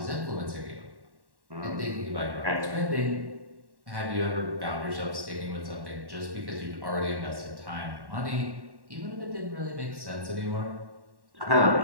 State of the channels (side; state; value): left; late; 1.1 ms